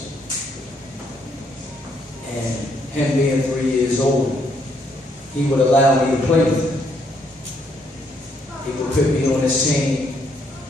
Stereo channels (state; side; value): normal; both; correlation 0.71